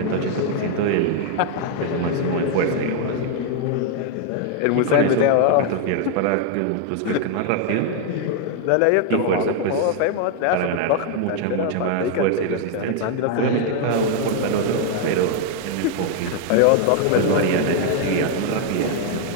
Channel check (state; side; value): different; both; correlation 0.00